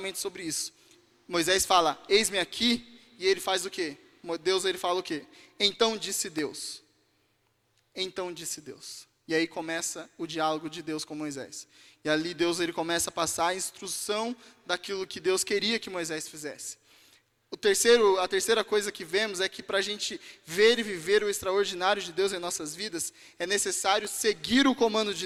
sobre isso. Moisés fala, eis-me aqui, e ele faz o quê? Deus ele fala o quê? Então disse Deus. Então disse Deus. E aí começa o diálogo de Deus com Moisés. E ali Deus ele começa a passar a instrução daquilo que Deus queria que Moisés fizesse. A terceira coisa que vemos é que para a gente ver e viver o extraordinário de Deus em nossas vidas, é necessário seguir o comando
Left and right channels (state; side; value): identical; both; correlation 1.00